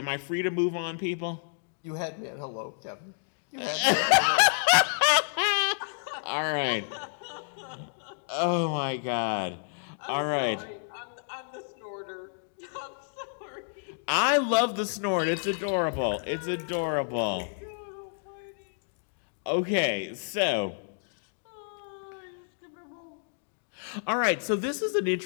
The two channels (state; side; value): silent; right; digital silence